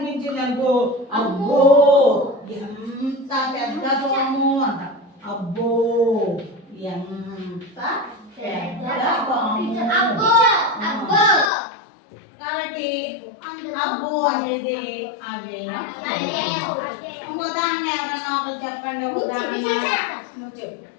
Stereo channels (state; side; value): drops out; right; at 11.5 s